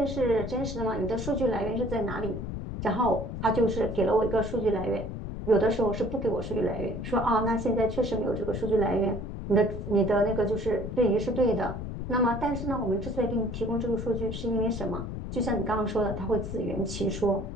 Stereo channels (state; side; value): noise; left; rumble, 6 dB below the sound